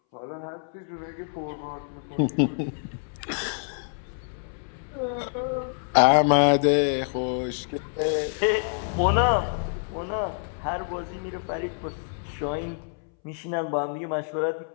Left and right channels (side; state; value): right; silent; 60 dB below the other